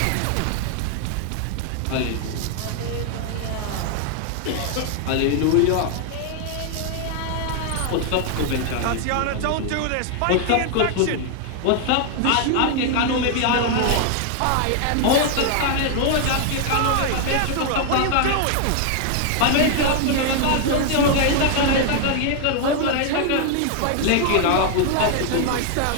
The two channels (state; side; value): different; both; correlation 0.00